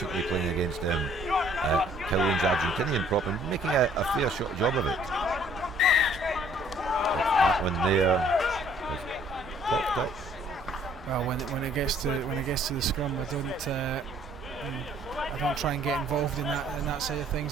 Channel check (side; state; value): both; normal; correlation 0.60